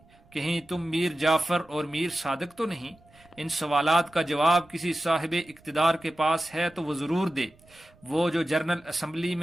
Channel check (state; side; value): noise; right; rumble, 29 dB below the sound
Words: کہیں تم میر جعفر اور میر صادق تو نہیں؟ ان سوالات کا جواب کسی صاحب اقتدار کے پاس ہے تو وہ ضرور دے۔ وہ جو جنرل اسمبلی